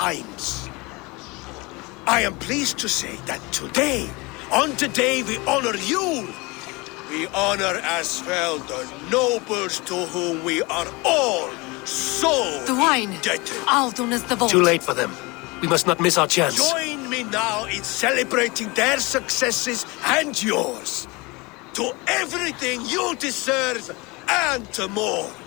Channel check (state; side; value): quieter; right; 25.2 dB